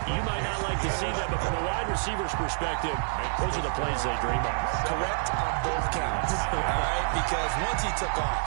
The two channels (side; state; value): left; silent; digital silence